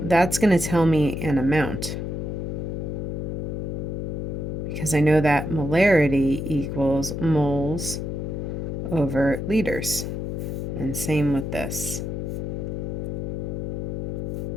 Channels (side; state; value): left; noise; hum, 3 dB below the sound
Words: that's going to tell me an amount, because I know that molarity equals moles over liters. And same with this.